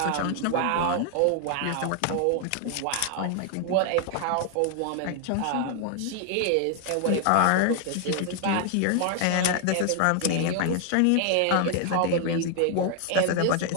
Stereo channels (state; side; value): different; both; correlation 0.00